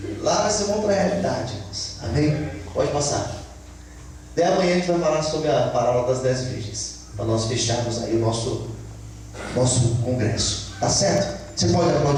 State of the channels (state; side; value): identical; both; correlation 1.00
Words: Lá vai ser uma outra realidade, irmãos. Amém? Pode passar. Até amanhã a gente vai falar sobre a parábola das 10 virgens, para nós fecharmos aí o nosso congresso. Tá certo? Você pode